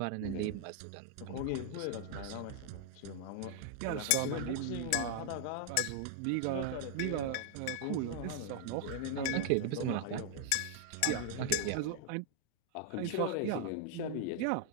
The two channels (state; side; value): different; both; correlation 0.00